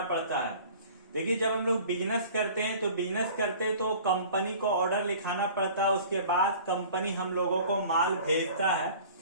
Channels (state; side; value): inverted; both; correlation -0.45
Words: पड़ता है। देखिए, जब हम लोग बिजनेस करते हैं तो कंपनी को ऑर्डर लिखाना पड़ता है। उसके बाद कंपनी हम लोगों को माल भेजता है।